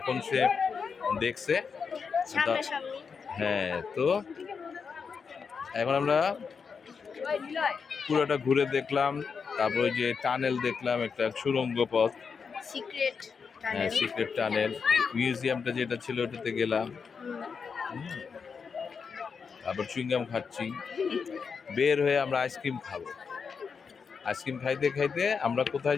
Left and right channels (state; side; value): quieter; right; 5.8 dB